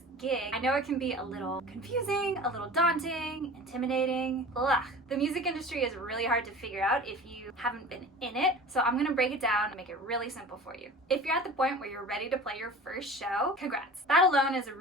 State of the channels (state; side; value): normal; both; correlation 0.39